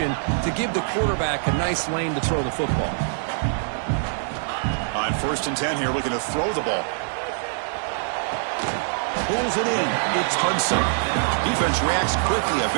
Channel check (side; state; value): left; silent; digital silence